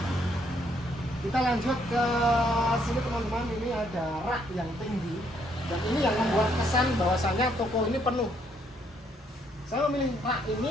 Kita lanjut ke sini teman-teman, ini ada rak yang tinggi. Dan ini yang membuat kesan bahwasanya toko ini penuh. Saya memilih rak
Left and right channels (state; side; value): normal; both; correlation 0.70